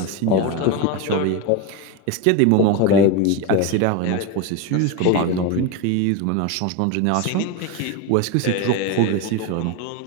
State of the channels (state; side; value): different; both; correlation 0.04